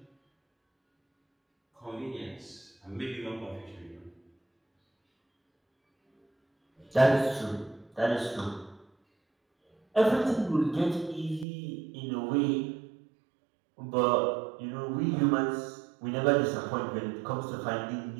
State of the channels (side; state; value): left; drops out; at 11.5 s